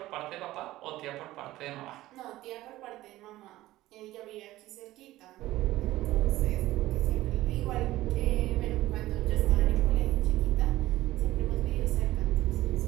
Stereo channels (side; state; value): left; quieter; 16.3 dB